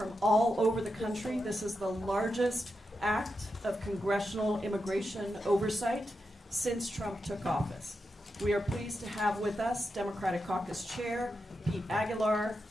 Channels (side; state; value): both; normal; correlation 0.87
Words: all over the country, this is the largest act of congressional immigration oversight since Trump took office. We are pleased to have with us Democratic Caucus Chair Pete Aguilar,